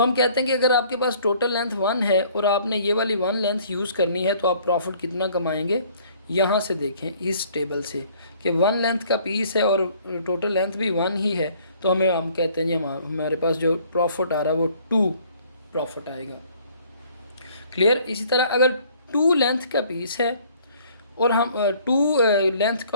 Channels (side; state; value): both; inverted; correlation -0.58